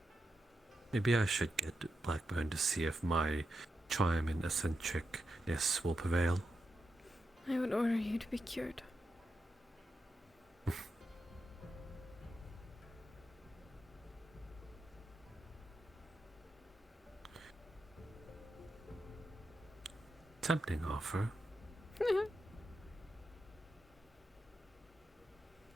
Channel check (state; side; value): normal; both; correlation 0.87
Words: Maybe I should get Blackburn to see if my charm and eccentricness will prevail. I would order you to be cured. Tempting offer.